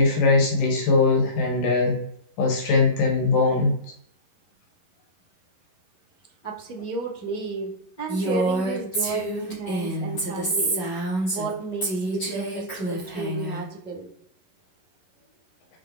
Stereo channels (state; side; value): late; right; 11 ms